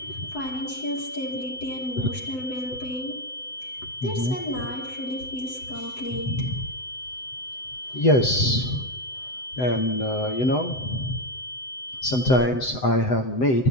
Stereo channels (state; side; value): late; right; 7.9 ms